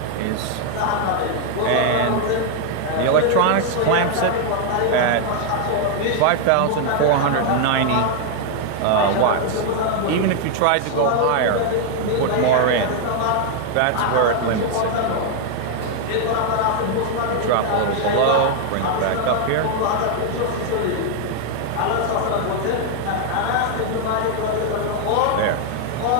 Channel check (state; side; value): different; both; correlation 0.00